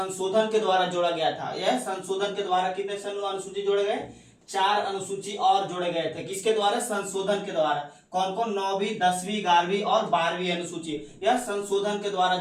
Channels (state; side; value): identical; both; correlation 1.00